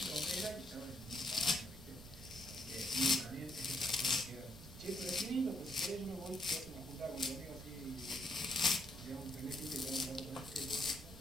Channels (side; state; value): right; noise; rumble, 14 dB below the sound